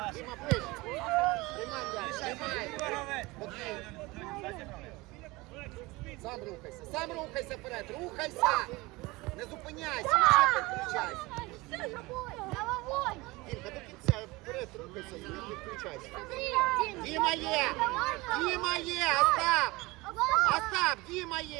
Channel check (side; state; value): left; quieter; 22.3 dB